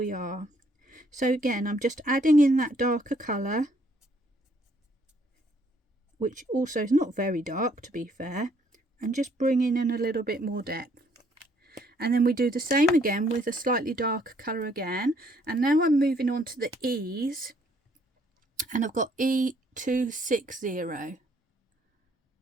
are. So again, I'm just adding in that darker colour, which also is not very dark to be fair, and just bringing in a little bit more depth. And then we do the same again with a slightly darker colour again. And now I'm moving on to the E's, and I've got E260.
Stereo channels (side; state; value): both; normal; correlation 0.66